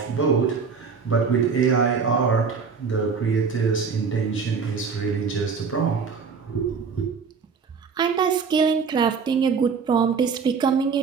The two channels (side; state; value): left; quieter; 5.6 dB